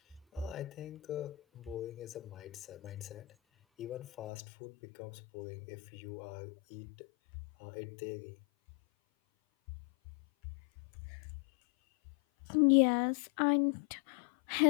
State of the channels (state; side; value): drops out; right; at 4.3 s